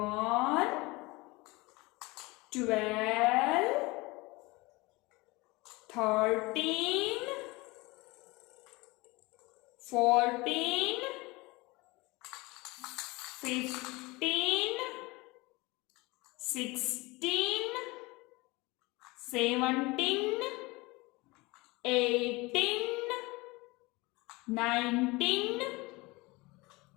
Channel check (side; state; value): right; quieter; 23.4 dB